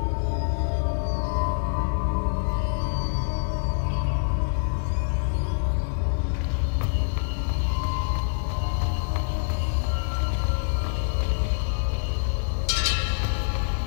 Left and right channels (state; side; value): silent; right; digital silence